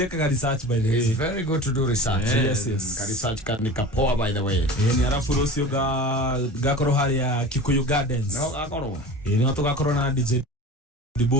research by the way. It's very good to do research. Yes. Research kan kapoa by the way. Ni arafu rusio gakoro haria Kikuyu Gardens. No gakoro. Ni watu gakoro na DJ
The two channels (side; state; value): both; normal; correlation 0.35